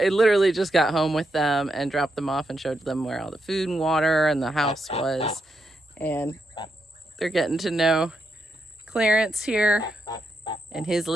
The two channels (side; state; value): both; normal; correlation 0.83